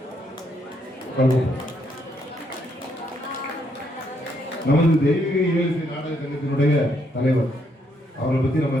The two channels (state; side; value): normal; both; correlation 0.74